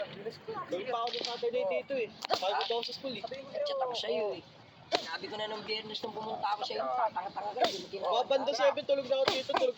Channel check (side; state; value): both; identical; correlation 1.00